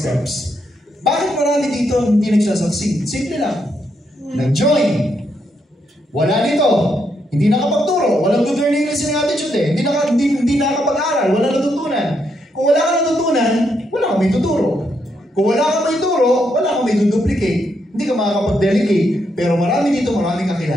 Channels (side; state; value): both; normal; correlation 0.78